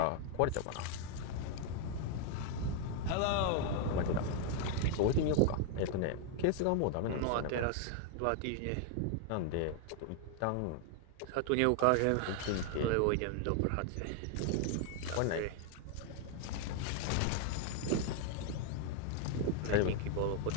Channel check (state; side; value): different; both; correlation 0.00